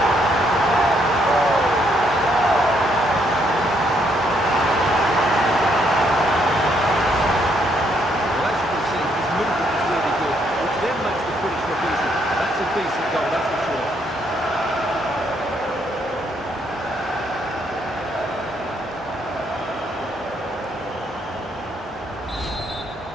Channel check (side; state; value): both; normal; correlation 0.72